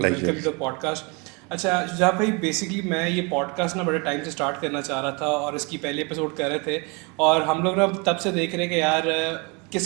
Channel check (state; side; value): quieter; left; 30.7 dB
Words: to the podcast. اچھا شجاع بھائی، بیسکلی میں یہ پوڈ کاسٹ نا بڑے ٹائم سے اسٹارٹ کرنا چاہ رہا تھا اور اس کی پہلی ایپیسوڈ کر رہے تھے، اور ہم لوگ نا تب سے دیکھ رہے کہ یار